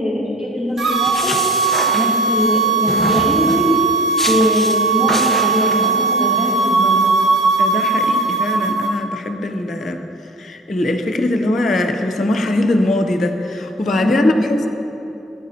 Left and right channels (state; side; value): normal; both; correlation 0.38